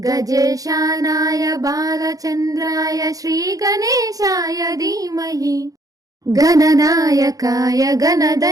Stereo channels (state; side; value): late; left; 0.17 ms